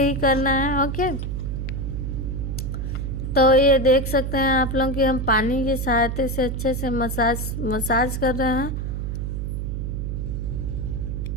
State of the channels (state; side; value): noise; right; hum, 3 dB below the sound